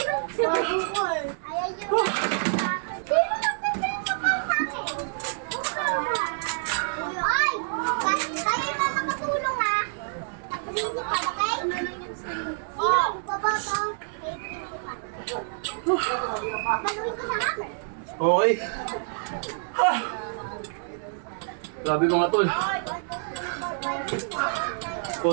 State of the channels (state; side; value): silent; left; digital silence